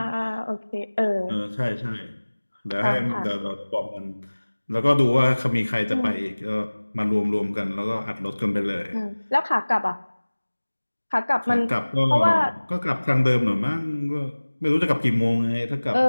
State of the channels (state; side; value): inverted; both; correlation -1.00